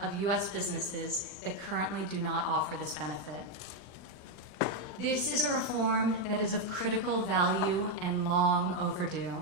U.S. businesses that currently do not offer this benefit. This is a reform that is of critical value and long overdue.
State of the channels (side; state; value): right; late; 40 ms